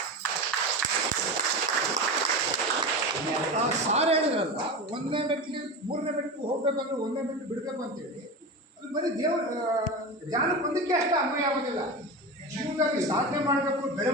ಸಾರು ಹೇಳಿದ್ರಲ್ಲ, 1ನೇ ಮೆಟ್ಲಿಗೆ 3ನೇ ಮೆಟ್ಲಿಗೆ ಹೋಗ್ಬೇಕಂದ್ರೆ 1ನೇ ಮೆಟ್ಲು ಬಿಡಬೇಕು ಅಂತೇಳಿ, ಅದು ಬರೀ ಧ್ಯಾನಕ್ಕೆ ಒಂದಕ್ಕೆ ಅಷ್ಟೇ ಅನ್ವಯ ಆಗೋದಿಲ್ಲ. ಜೀವನದಲ್ಲಿ ಸಾಧನೆ ಮಾಡಬೇಕು,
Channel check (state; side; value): normal; both; correlation 0.25